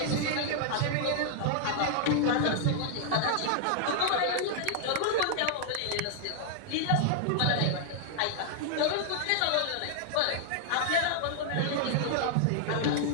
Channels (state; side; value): different; both; correlation -0.01